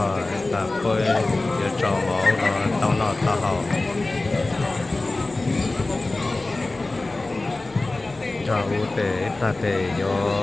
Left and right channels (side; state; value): right; quieter; 3.1 dB